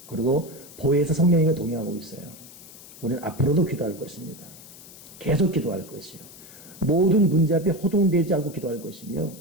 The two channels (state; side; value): noise; left; hiss, 18 dB below the sound